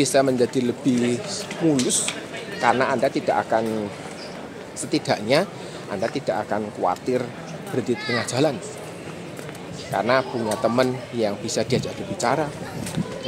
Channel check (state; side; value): identical; both; correlation 1.00